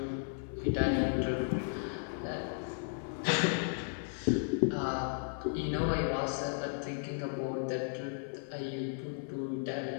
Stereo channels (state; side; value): silent; right; 55 dB below the other